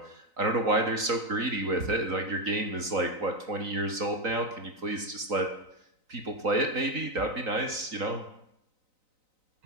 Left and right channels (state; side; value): late; left; 3.9 ms